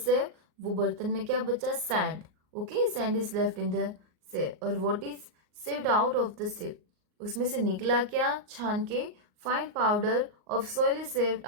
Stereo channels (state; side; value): late; left; 38 ms